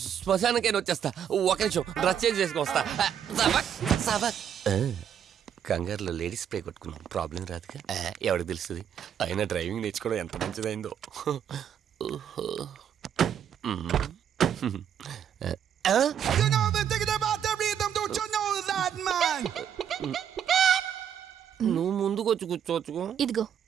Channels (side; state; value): left; quieter; 8.9 dB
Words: శ్మశానకైనా వచ్చేస్తా. ఒక నిమిషం, డ్రెస్ చేంజ్ చేసుకుని వస్తా. కంగారులో లేడీస్ స్ప్రే కొట్టుకున్నాం, ప్రాబ్లం రాదుగా. ఎవరికి తెలుస్తుంది? అయినా డ్రైవింగ్ నేర్చుకోవడం ఎంత మంచిదైందో. నువ్వు ముందుకొచ్చి కూర్చోవచ్చు. ఇదిగో